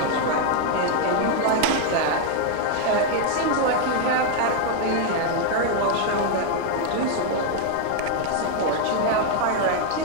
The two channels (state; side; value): different; both; correlation 0.00